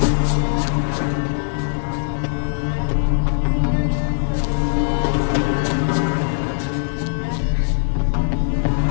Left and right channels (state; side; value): silent; right; 66 dB below the other